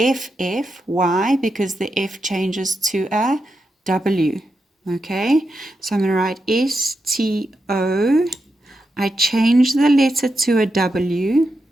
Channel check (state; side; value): normal; both; correlation 0.86